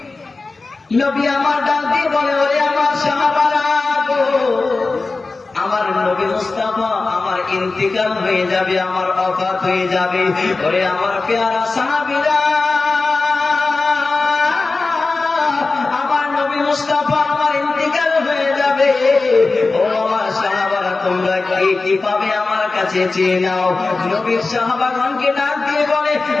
নবী আমার ডাক দিয়ে বলে, ওরে আমার সাহাবারা গো, আমার নবী মুস্তাফা আমার ইন্তিকাল হয়ে যাবে, আমার ওফাত হয়ে যাবে। ওরে আমার পেয়ারা সাহাবীরা, আমার নবী মুস্তাফা আমার ইন্তিকাল হয়ে যাবে। ও আমার সাহাবারা, তোমরা কি পাবে আমার কাছে চেয়ে নাও। নবীর সাহাবাগণকে ডাক দিয়ে বলে,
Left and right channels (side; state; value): right; quieter; 3.7 dB